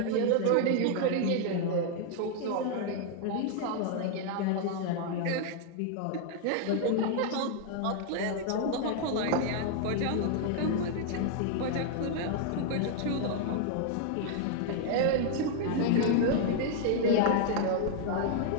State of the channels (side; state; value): both; different; correlation 0.00